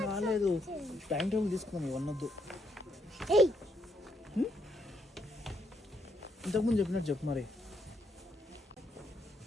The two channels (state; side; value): normal; both; correlation 0.75